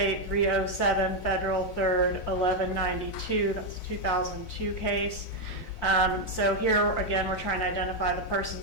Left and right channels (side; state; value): both; normal; correlation 0.03